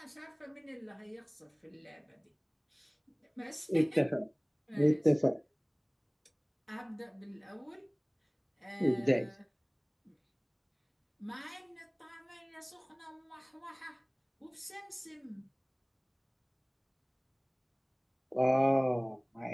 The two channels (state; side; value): identical; both; correlation 1.00